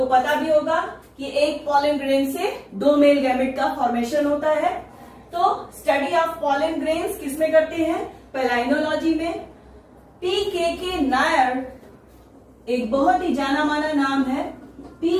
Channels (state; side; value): identical; both; correlation 1.00